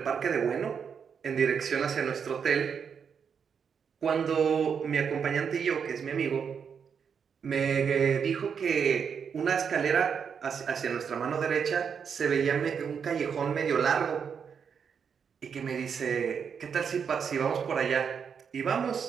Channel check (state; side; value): quieter; left; 6.8 dB